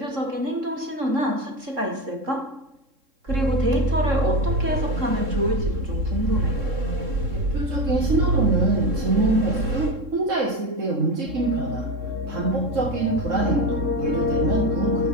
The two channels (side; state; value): left; late; 3.7 ms